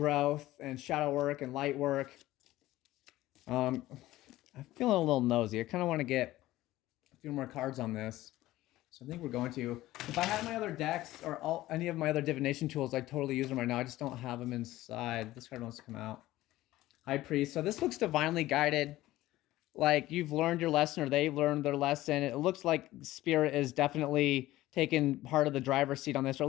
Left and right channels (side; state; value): right; quieter; 16.3 dB